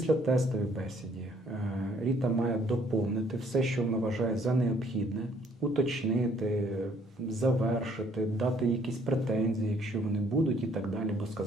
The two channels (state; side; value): normal; both; correlation 0.63